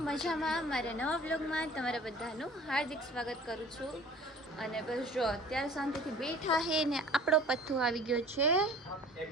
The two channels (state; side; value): normal; both; correlation 0.47